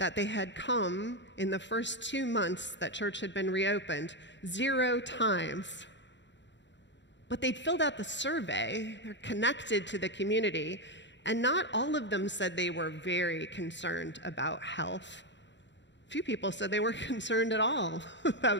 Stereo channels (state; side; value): late; right; 0.52 ms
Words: they had come in the first 2 months that church had been reopened 0 times. But they'd filled out the survey, they're connected to the community, and not all of them said they were very concerned about health. Few people said they weren't concerned at all